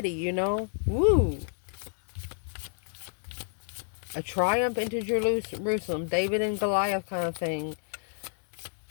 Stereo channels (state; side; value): silent; right; digital silence